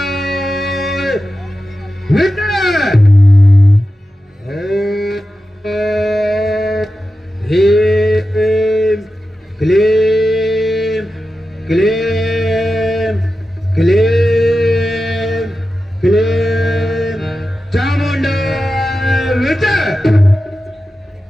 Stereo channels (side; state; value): both; normal; correlation 0.92